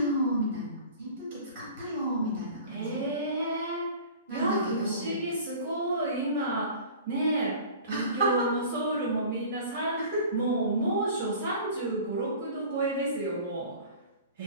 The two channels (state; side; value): inverted; both; correlation -0.42